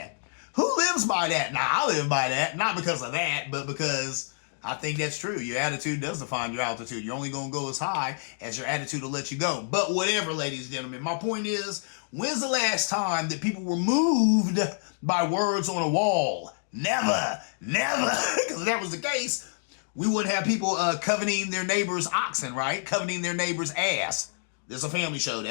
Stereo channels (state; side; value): silent; right; digital silence